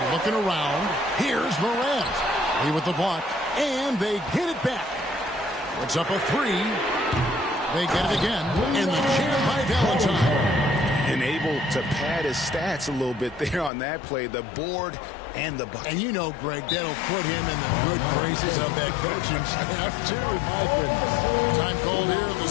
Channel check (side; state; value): right; drops out; at 13.7 s